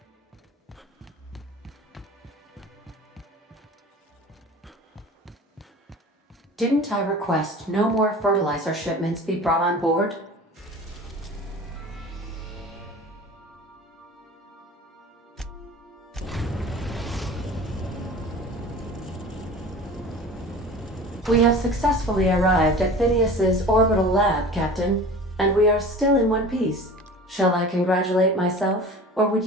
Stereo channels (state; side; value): normal; both; correlation 0.39